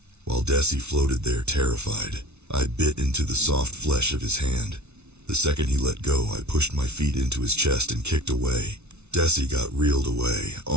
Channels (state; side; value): late; left; 0.81 ms